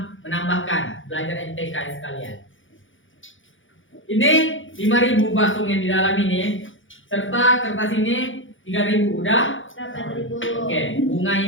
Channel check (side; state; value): right; late; 0.57 ms